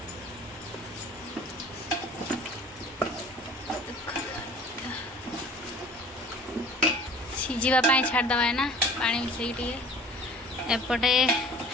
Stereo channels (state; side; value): normal; both; correlation 0.46